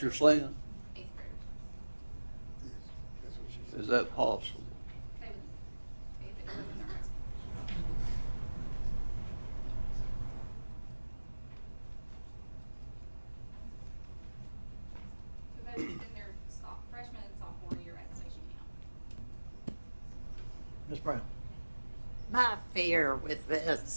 you're saying? Is that possible? Ms. Brown. My fear with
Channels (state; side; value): inverted; both; correlation -1.00